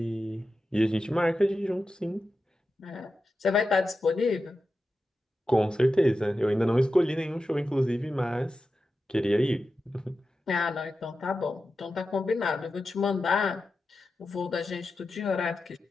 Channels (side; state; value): both; normal; correlation 0.91